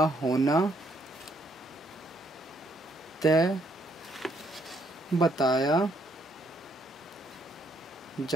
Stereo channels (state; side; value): normal; both; correlation 0.71